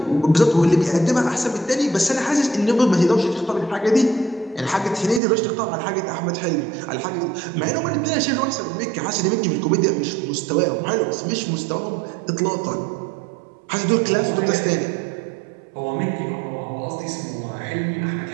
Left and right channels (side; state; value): left; drops out; at 5.2 s